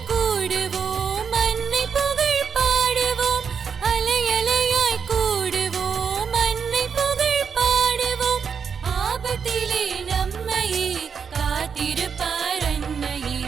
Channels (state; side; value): quieter; left; 6.5 dB